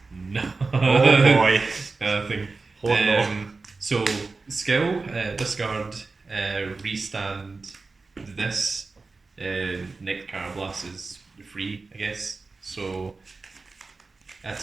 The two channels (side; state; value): left; quieter; 3.9 dB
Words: no. Oh boy. Nothing. Hold on. So skill, discard, restand this. Nick Carablast is free, I guess. So